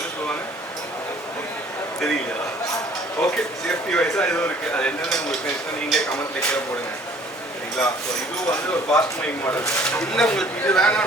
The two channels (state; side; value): normal; both; correlation 0.56